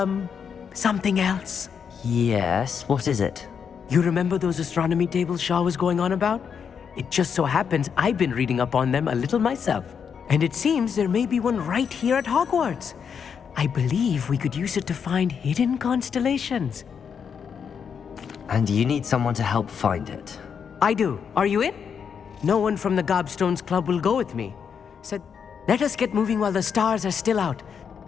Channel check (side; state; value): right; quieter; 7.0 dB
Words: something else. Yes, what is it? You remember those astronomy tables Shaw was going on about? It just so happens I've been reading up on them a little myself. And it seems there may be one right here at Hogwarts. I believe we could use it to find hidden constellations. And you need someone to help find it. I do. Are you in? No one from the Gobstones Club will go with me. Said, let us get moving while the stars are still out.